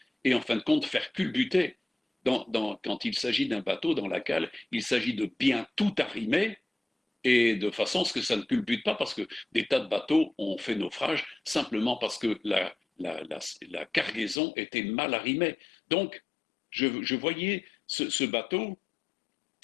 et en fin de compte faire culbuter. Quand il s'agit d'un bateau dans la cale, il s'agit de bien tout arrimer et de façon à ce que ça ne culbute pas, parce que des tas de bateaux ont fait naufrage simplement parce que la cargaison était mal arrimée. Donc, je voyais ce bateau,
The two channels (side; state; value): right; drops out; at 14.4 s